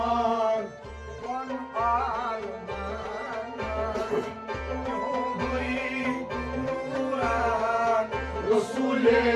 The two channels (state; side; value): identical; both; correlation 1.00